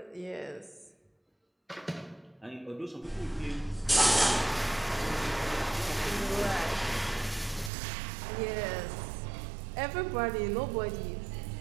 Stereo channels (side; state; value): left; drops out; at 7.7 s